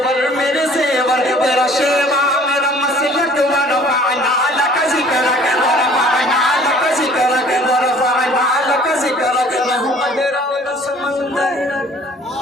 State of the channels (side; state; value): both; normal; correlation 0.53